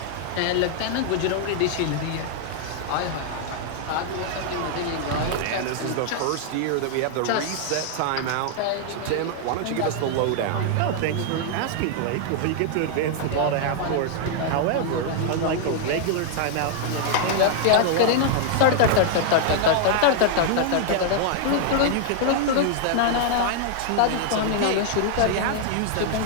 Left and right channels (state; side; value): different; both; correlation -0.01